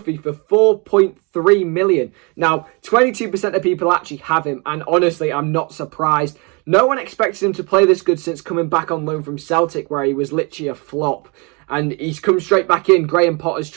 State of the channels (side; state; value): left; quieter; 30.9 dB